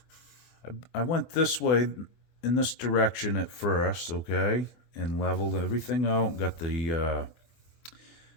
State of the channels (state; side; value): late; right; 24 ms